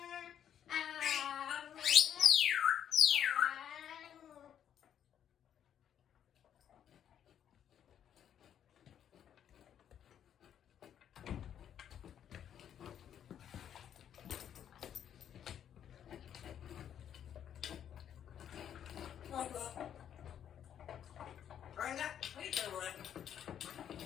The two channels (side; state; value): right; quieter; 9.5 dB